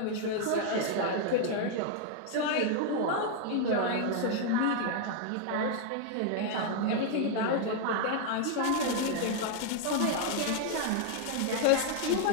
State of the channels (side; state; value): both; different; correlation 0.00